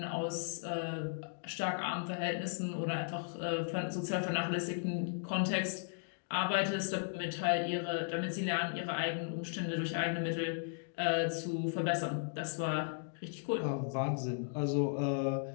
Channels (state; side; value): silent; right; digital silence